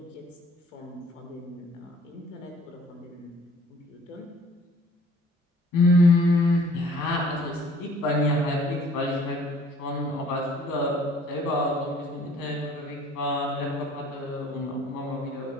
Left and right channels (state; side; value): normal; both; correlation 0.55